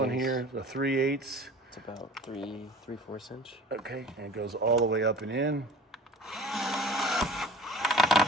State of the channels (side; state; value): both; normal; correlation 0.43